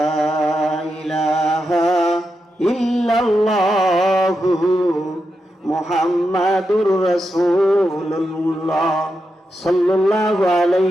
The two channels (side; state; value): both; normal; correlation 0.87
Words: ইলাহা ইল্লাল্লাহু মুহাম্মাদুর রাসূলুল্লাহ সাল্লাল্লাহু